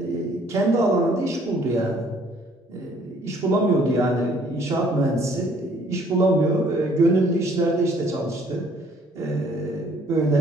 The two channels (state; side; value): normal; both; correlation 0.61